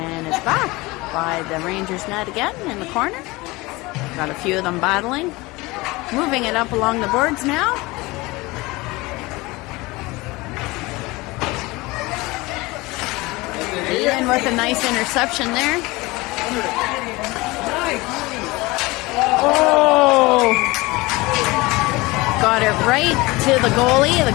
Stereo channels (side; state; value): right; quieter; 22.4 dB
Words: it's back by the Rangers net again in the corner. Got a few of them battling. Moving it up along the boards now. Ian with a nice interception there. Oh! Got it right to the goalie. The